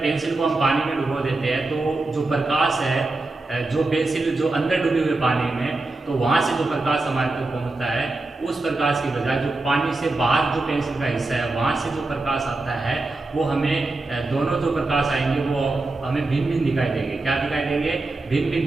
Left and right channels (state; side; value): quieter; left; 3.2 dB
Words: पेंसिल को हम पानी में डुबो देते हैं तो जो प्रकाश है जो पेंसिल जो अंदर डूबे हुए पानी में तो वहाँ से जो प्रकाश हमारे तक पहुँचता है उस प्रकाश की बजाय जो पानी से बाहर जो पेंसिल का हिस्सा है वहाँ से जो प्रकाश आता है वो हमें दोनों जो प्रकाश आएंगे वो हमें भिन्न भिन्न दिखाई देंगे। क्या दिखाई देंगे, भिन्न भिन्न